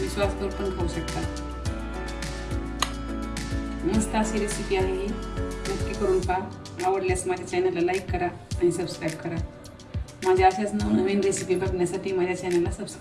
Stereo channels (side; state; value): both; identical; correlation 1.00